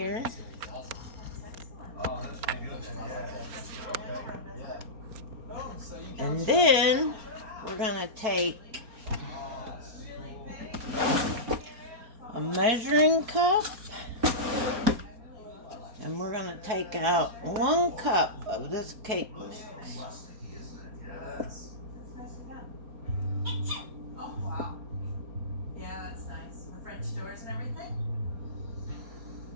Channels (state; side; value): late; left; 4.3 ms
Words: And then we're going to take a measuring cup. And we're going to take out 1 cup of this cake mix. Oh, wow. Yeah, that's nice. With French doors and everything?